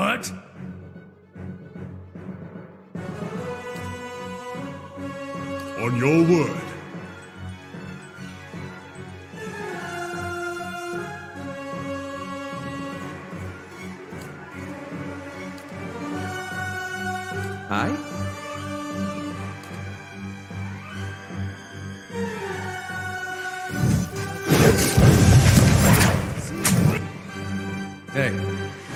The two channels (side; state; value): both; identical; correlation 1.00